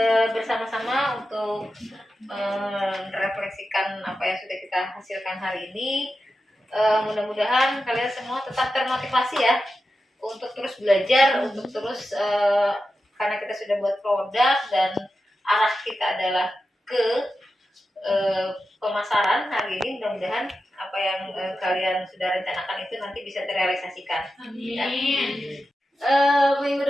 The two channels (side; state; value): both; normal; correlation 0.91